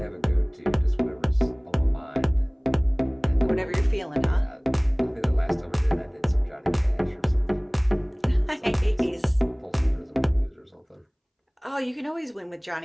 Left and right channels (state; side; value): identical; both; correlation 1.00